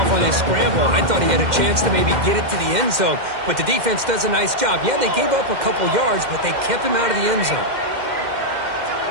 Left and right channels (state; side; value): late; left; 2.1 ms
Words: on his scramble, I thought he had a chance to maybe get it to the end zone. But the defense does a nice job. Yeah, they gave up a couple yards, but they kept him out of the end zone.